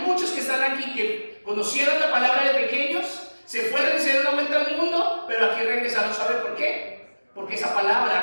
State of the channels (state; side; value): inverted; both; correlation -1.00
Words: que están aquí que conocieron la palabra de pequeños, se fueron y se dieron vuelta al mundo, pero aquí regresaron. ¿Sabe por qué? Porque esa